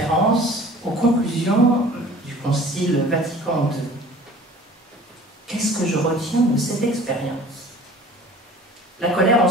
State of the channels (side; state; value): both; normal; correlation 0.46